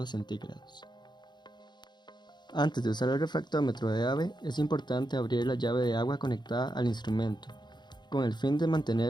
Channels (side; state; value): right; late; 0.21 ms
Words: centígrados. Antes de usar el refractómetro de Abbe, es importante abrir la llave de agua conectada al instrumento, con el fin de